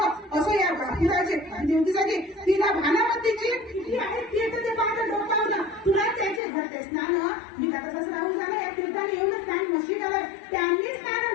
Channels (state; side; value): drops out; right; at 6.4 s